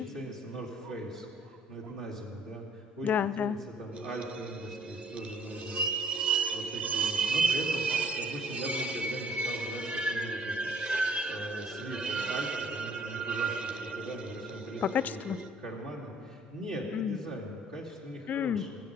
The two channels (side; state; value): both; normal; correlation 0.57